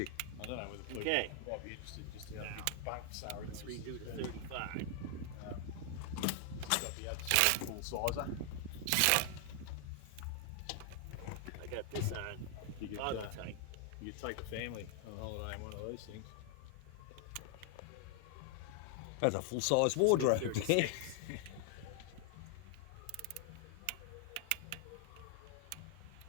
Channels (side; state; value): both; different; correlation 0.00